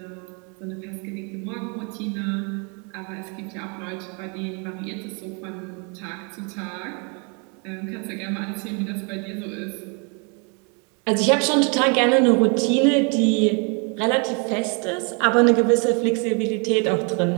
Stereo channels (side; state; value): left; quieter; 35.1 dB